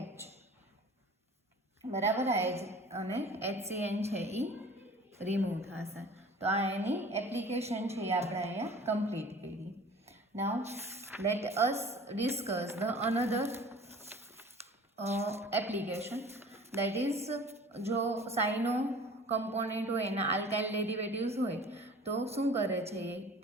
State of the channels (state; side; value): normal; both; correlation 0.45